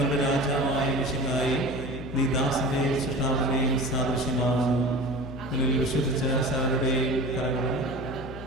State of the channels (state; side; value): noise; left; hum, 12 dB below the sound